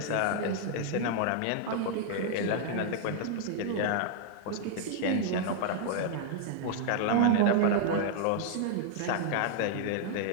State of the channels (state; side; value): different; both; correlation -0.01